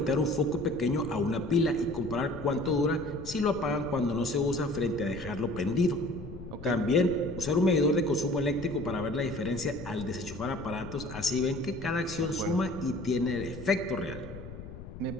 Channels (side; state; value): left; noise; rumble, 12 dB below the sound